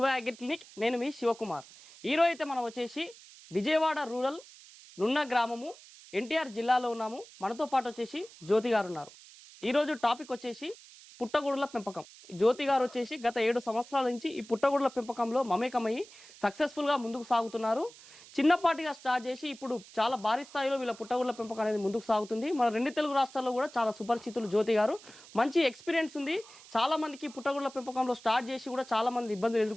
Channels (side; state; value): right; noise; hiss, 20 dB below the sound